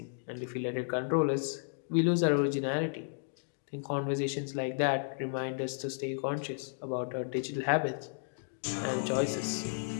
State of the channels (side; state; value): right; silent; digital silence